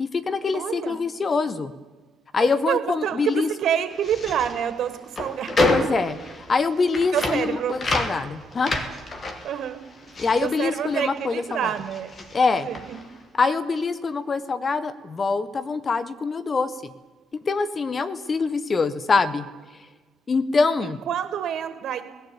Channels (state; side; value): normal; both; correlation 0.79